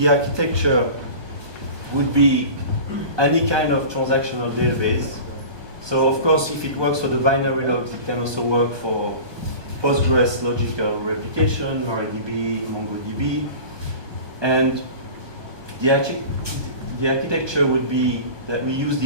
architecture would be any kind of transactional database. So of course, if it works for the binary logs, it can also work for Postgres logical replication, MariaDB, MongoDB. And the architecture would be that we use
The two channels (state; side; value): late; left; 1.2 ms